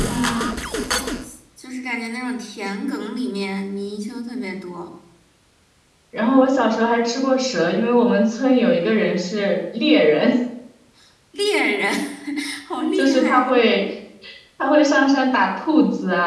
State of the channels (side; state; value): both; identical; correlation 1.00